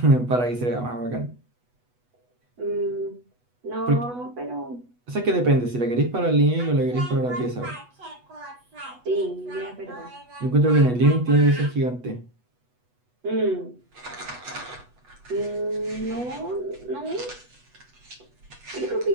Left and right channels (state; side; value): late; left; 8.2 ms